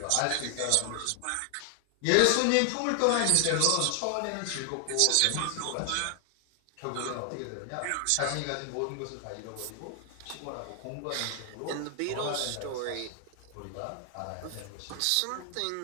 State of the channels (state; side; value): different; both; correlation 0.00